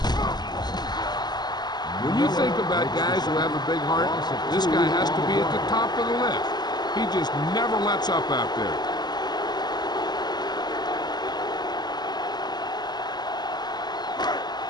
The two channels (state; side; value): late; right; 0.20 ms